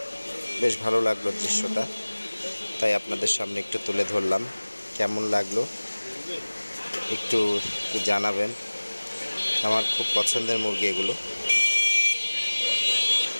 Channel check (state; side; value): inverted; both; correlation -1.00